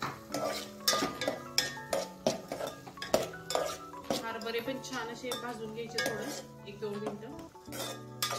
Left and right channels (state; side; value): identical; both; correlation 1.00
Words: हरभरे पण छान असे भाजून घ्यायचे, थोडं 1-2 मिनिटं।